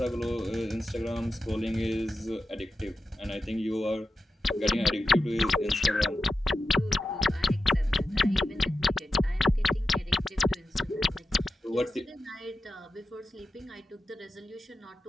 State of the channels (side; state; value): both; normal; correlation 0.91